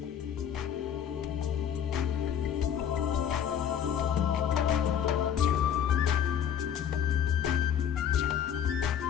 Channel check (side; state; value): right; quieter; 8.8 dB